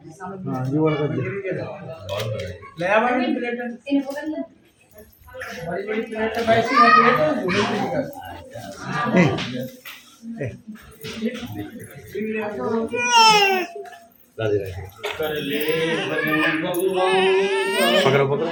हाँ ये वाला कर दे। ले आ बड़ी प्लेट इन्हें पकड़ ले बड़ी बड़ी प्लेट है वैसी है प्लेट बड़ी बड़ी का राधे राधे कर ले भजन भगवान पकड़ो पकड़ो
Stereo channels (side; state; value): both; identical; correlation 1.00